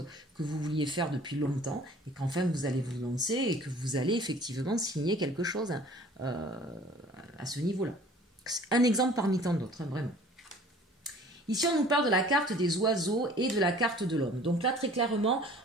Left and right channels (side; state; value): both; normal; correlation 0.49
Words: que vous vouliez faire depuis longtemps, et qu'enfin vous allez vous lancer, et que vous allez effectivement signer quelque chose à ce niveau-là. Un exemple parmi tant d'autres, hein, vraiment. Ici, on nous parle de la carte des oiseaux et de la carte de l'homme. Donc là, très clairement,